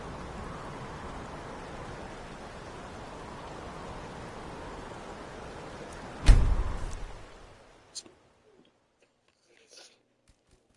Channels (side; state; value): both; identical; correlation 1.00